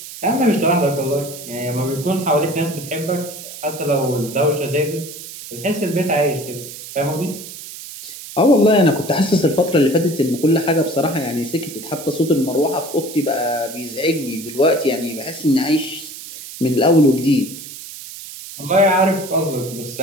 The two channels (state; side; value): noise; right; hiss, 13 dB below the sound